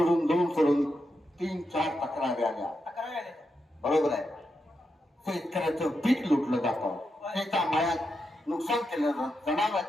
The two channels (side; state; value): both; normal; correlation 0.85